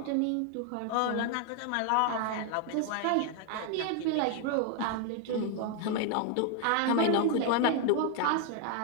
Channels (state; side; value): different; both; correlation 0.01